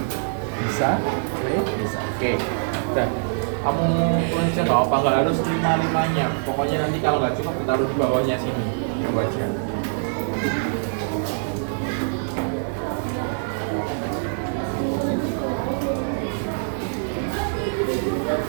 Bisa, boleh, bisa. Oke, udah. Kamu tulis aja nggak apa, nggak harus 5-5-nya. Pokoknya nanti kalau nggak cukup taruh di bawahnya sini, yang wajar.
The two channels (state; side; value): silent; left; digital silence